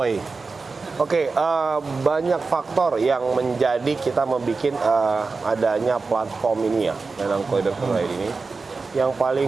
Oke, banyak faktor yang menjadi kita membuat adanya platform ini ya, lelangkoi.co.id ini. Yang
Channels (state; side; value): quieter; left; 4.2 dB